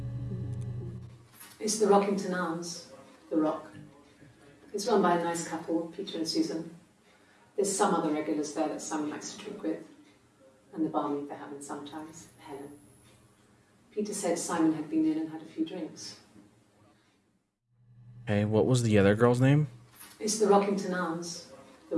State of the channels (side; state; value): both; identical; correlation 1.00